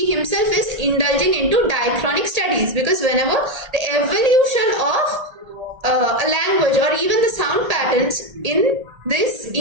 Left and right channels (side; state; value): left; late; 1.8 ms